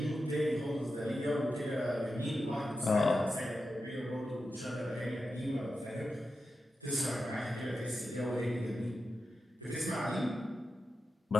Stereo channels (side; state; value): both; normal; correlation 0.90